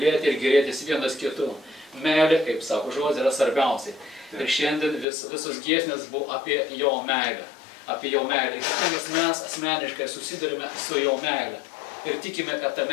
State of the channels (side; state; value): right; drops out; at 5.1 s